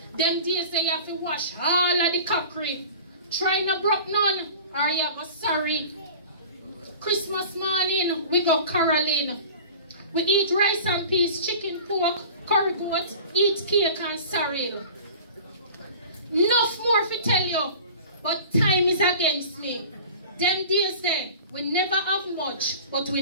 Them days that you have to wash all of the cockery. Try not broke none or you go sorry. Christmas morning, we go caroling. We eat rice and peas, chicken, pork, curry goat, eat cake and sorrel. Enough more to tell you, but time is against me. Them days there, we never have much, but we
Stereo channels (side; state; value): both; inverted; correlation -0.40